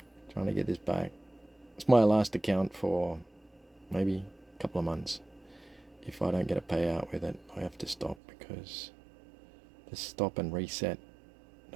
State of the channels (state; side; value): drops out; left; at 8.2 s